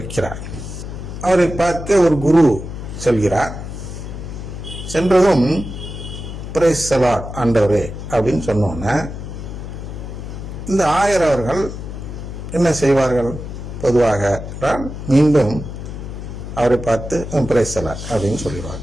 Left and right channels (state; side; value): noise; left; hum, 9 dB below the sound